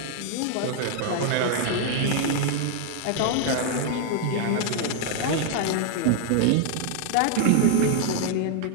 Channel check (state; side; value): different; both; correlation 0.00